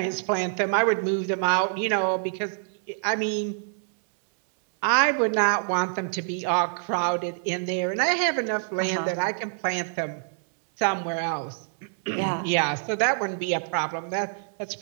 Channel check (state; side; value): silent; left; 61 dB below the other